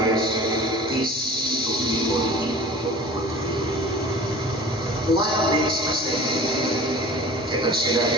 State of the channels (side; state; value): both; normal; correlation 0.41